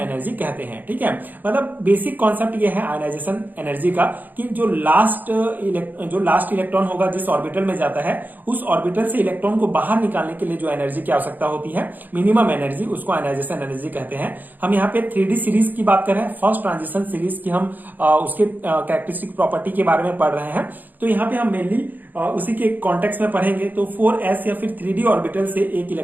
कहते हैं, ठीक है। मतलब बेसिक कॉन्सेप्ट ये है आयनाइजेशन एनर्जी का कि जो लास्ट इलेक्ट्रॉन होगा जिस ऑर्बिटल में जाता है, उस ऑर्बिटल से इलेक्ट्रॉन को बाहर निकालने के लिए जो एनर्जी की आवश्यकता होती है, मिनिमम एनर्जी, उसको आयनाइजेशन एनर्जी कहते हैं। हम यहाँ पे 3D सीरीज की बात कर रहे हैं, फर्स्ट ट्रांजिशन सीरीज की हम उसके कैरेक्टरिस्टिक प्रॉपर्टी के बारे में पढ़ रहे हैं। तो यहाँ पे हम मेनली उसी के कॉन्टेक्स्ट में पढ़ेंगे। तो 4s या फिर 3D ऑर्बिटल से एक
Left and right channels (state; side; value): late; left; 0.086 ms